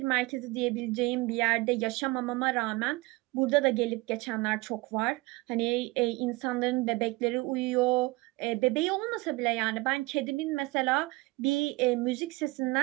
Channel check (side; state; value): left; quieter; 23.2 dB